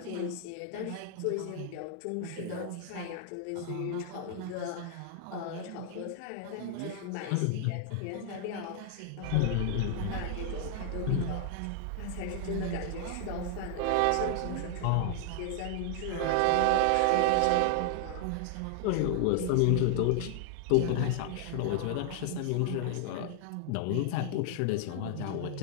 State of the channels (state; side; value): different; both; correlation 0.00